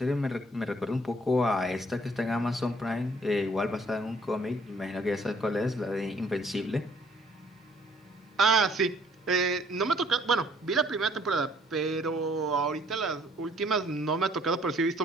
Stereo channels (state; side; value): normal; both; correlation 0.61